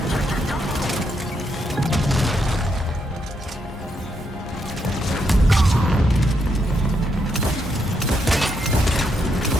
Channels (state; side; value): normal; both; correlation 0.79